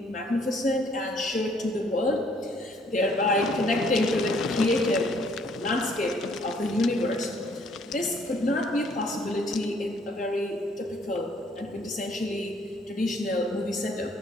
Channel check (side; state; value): both; normal; correlation 0.63